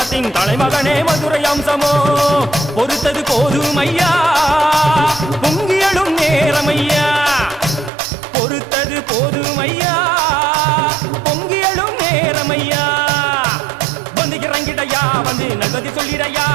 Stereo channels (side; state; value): left; drops out; at 7.9 s